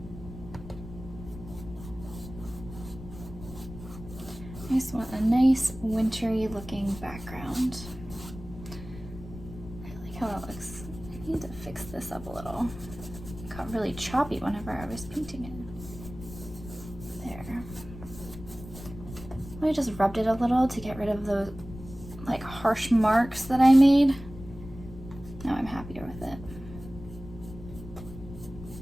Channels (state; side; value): noise; left; rumble, 13 dB below the sound